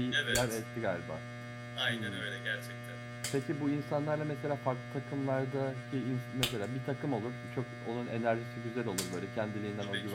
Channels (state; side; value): identical; both; correlation 1.00